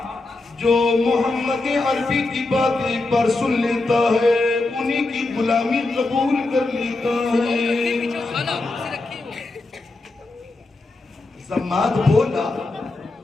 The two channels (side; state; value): right; quieter; 3.2 dB